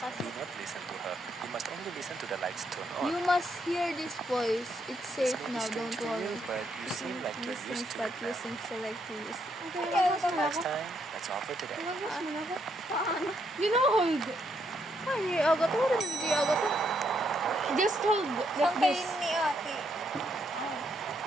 do not listen to her. You must only listen to the lights turn on. You must hear this voice. It's This safe may be now, strange don't to you, worry. but you seem like you're used to But it you now. seem so like to use. Next time, that's all for today. You know, hold. Ay, hindi agad to. Hindi agad to. Just hold like this. ni ate.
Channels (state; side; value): normal; both; correlation 0.75